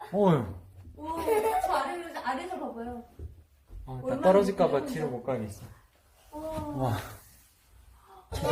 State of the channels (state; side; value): identical; both; correlation 1.00